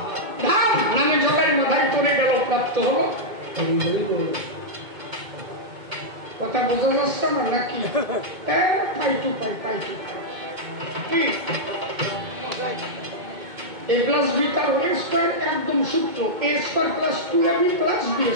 নামে জগায় মাথায় পড়ে গেল, প্রাপ্ত হলো। কথা বোঝা যাচ্ছে না নাকি? পাই টু পাই, পাই টু পাই। কি a plus b তার a স্কয়ার একদম সূত্র, a square plus 2ab plus b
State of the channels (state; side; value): late; left; 2.2 ms